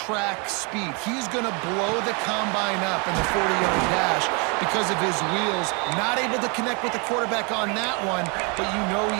speed. He's going to blow the combine up in the 40-yard dash because of his wheels. Not able to connect with the quarterback on that one, but you know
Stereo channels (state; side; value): quieter; left; 33.1 dB